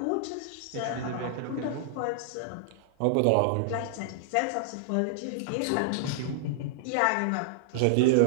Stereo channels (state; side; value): different; both; correlation -0.01